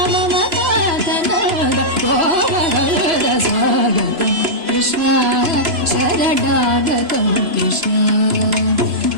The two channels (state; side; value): late; left; 3.0 ms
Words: मम कान्तनन्द गोपकन्द स्वागतं कृष्ण शरणागतं कृष्ण